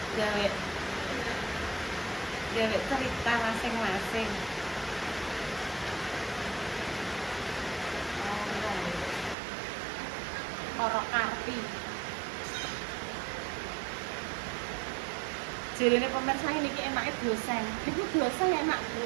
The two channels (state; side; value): drops out; left; at 9.3 s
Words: gawe cerita masing-masing. Koro karpi. Jarine pemirsa ini enaknya dosen. Itu dosen enak, Bu.